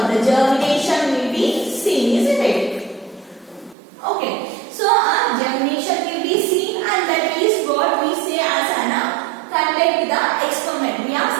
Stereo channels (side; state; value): left; drops out; at 3.8 s